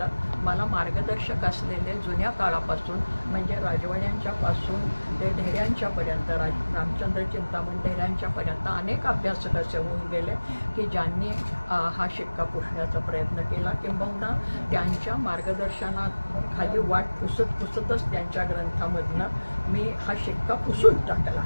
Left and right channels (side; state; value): both; inverted; correlation -1.00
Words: मला मार्गदर्शक असलेले जुन्या काळापासून म्हणजे राजवाड्यांच्यापासून ते ढेऱ्यांच्यापर्यंत, रामचंद्र चिंतामण ढेऱ्यांच्यापर्यंत अनेक अभ्यासक असे होऊन गेले की ज्यांनी हा शिक्का पुसण्याचा प्रयत्न केला, किंबहुना त्यांच्या मार्गदर्शनात खाली वाट पुसतच त्यांच्या ग्रंथामधनं मी हा शिक्का पुसून टाकला